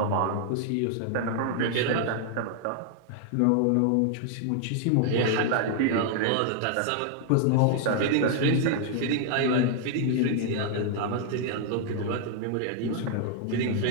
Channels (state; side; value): different; both; correlation 0.00